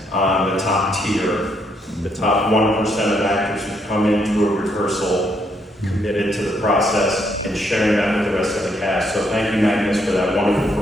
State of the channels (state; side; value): normal; both; correlation 0.73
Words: on the top tier, the top 1% of actors who come into a rehearsal committed to the process and sharing that with the rest of the cast. So thank you, Magnus, for that